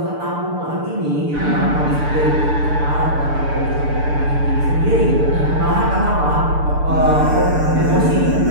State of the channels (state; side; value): late; left; 6.8 ms